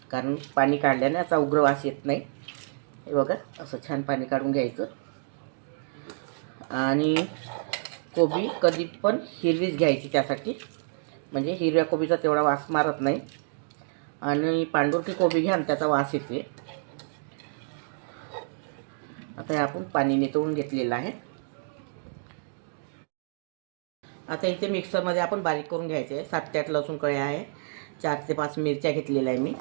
कारण पाणी काढल्याने याचा उग्र वास येत नाही. हे बघा, असं छान पाणी काढून घ्यायचं. आणि कोबी कधी पण हिरवीच घ्यायची, त्यासाठी म्हणजे हिरव्या कोबीचा तेवढा वास मारत नाही. आणि पांढुरकी कोबी घ्या, त्याचा वास येते. आता आपण पाणी नितळून घेतलेलं आहे. आता इथे मिक्सरमध्ये आपण बारीक करून घ्यायचे आहे. 7 ते 8 लसूण कळ्या आहे, 4 ते 5 मिरच्या घेतलेल्या आहे मी.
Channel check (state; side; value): silent; left; digital silence